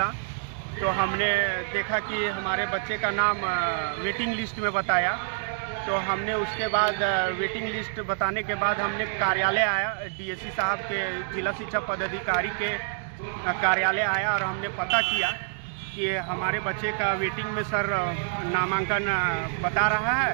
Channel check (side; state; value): left; silent; digital silence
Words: तो हमने देखा कि हमारे बच्चे का नाम वेटिंग लिस्ट में बताया। तो हमने उसके बाद वेटिंग लिस्ट बताने के बाद हमने कार्यालय आया, डीएससी साहब के जिला शिक्षा पदाधिकारी के कार्यालय आया और हमने पता किया कि हमारे बच्चे का वेटिंग में सर नामांकन बता रहा